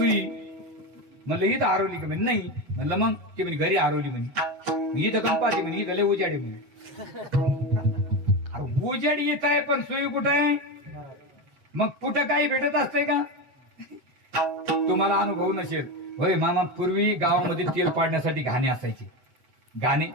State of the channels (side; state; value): left; late; 8.1 ms